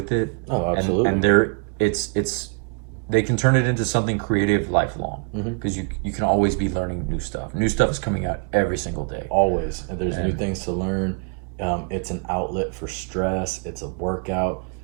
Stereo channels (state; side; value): quieter; left; 38.7 dB